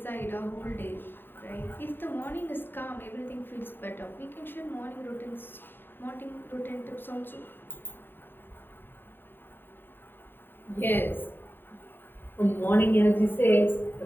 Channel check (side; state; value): right; late; 0.096 ms